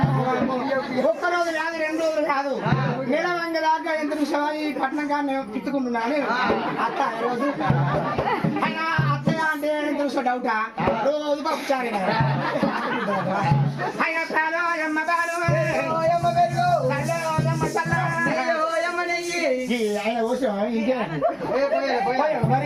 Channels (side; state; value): both; identical; correlation 1.00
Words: ఒక్కరోజు కాదు 2 రోజులు కాదు నిలవంగ దాకా ఎంత చూసావా ఈ పట్నం కానీ తిట్టుకుంటున్నాను అత్త రోజు అయినా అత్తయ్య అంటే ఎంత చూసా డౌటా రోజు పప్పుచారు అయినా కాదు అమ్మ కాదు ఆయన కోసం ఇంకే